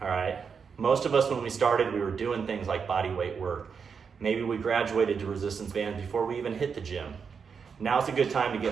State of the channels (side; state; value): left; quieter; 6.1 dB